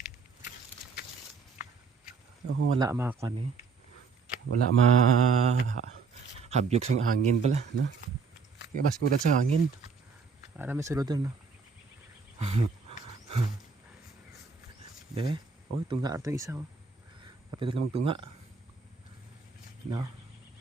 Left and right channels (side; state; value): left; quieter; 5.1 dB